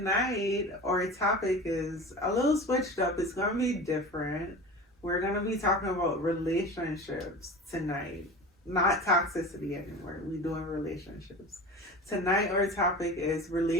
our topic is a little switched up. It's gonna be different. We're gonna be talking about relationships tonight. Not toxicity anymore. We doing relationships. Tonight our topic is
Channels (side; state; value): both; normal; correlation 0.33